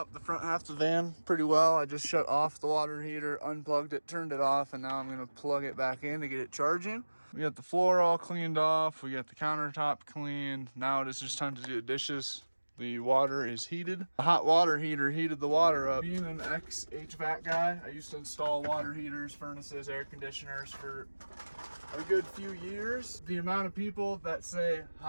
the front half of the van pretty well. I just shut off the water heater, unplugged it, turned it off, and now I'm gonna plug it back in to get it charging. We got the floor all cleaned off. We got the countertop cleaned. Now it is just time to do the dishes. The water is heated. The hot water heater heated the water up. Being an ex-HVAC guy, I used to install water heaters, furnaces, air conditioners for a good few years. The amount of people that say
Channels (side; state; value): both; inverted; correlation -1.00